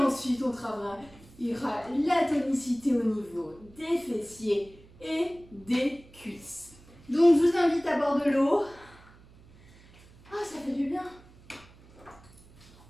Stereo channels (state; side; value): noise; right; hum, 24 dB below the sound